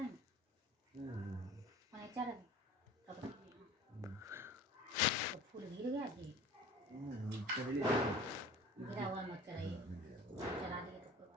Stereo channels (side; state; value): both; normal; correlation 0.42